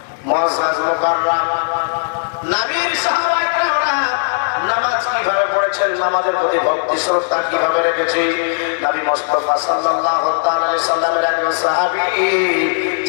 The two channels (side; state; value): right; silent; digital silence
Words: মুআজ্জাজ মুকাররাম নবীর সাহাবায়ে কেরামরা নামাজ কিভাবে পড়েছেন, নামাজের প্রতি ভক্তি শ্রদ্ধা কিভাবে রেখেছে। নবী মুস্তাফা সাল্লাল্লাহু তাআলা আলাইহি সাল্লামের একজন সাহাবী,